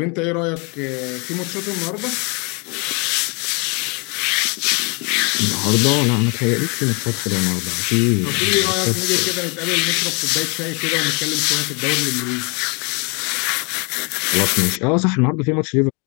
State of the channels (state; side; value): quieter; right; 32.9 dB